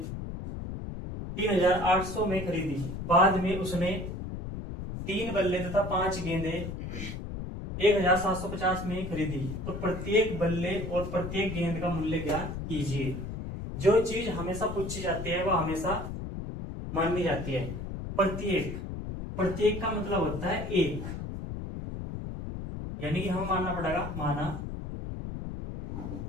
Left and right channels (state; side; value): noise; left; rumble, 7 dB below the sound